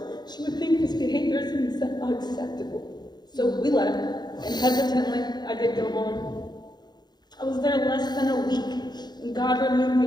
she would think this behavior is unacceptable. So we left, and hesitantly, I did go home. I was there less than a week, and God removed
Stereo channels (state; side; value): late; right; 0.20 ms